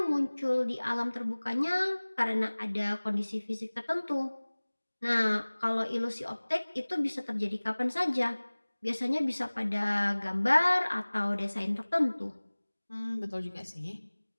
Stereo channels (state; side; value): inverted; both; correlation -1.00